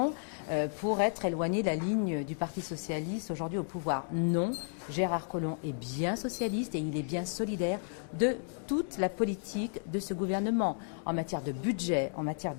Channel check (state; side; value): silent; right; digital silence